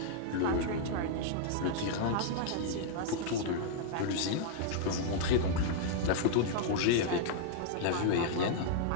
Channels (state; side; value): different; both; correlation -0.02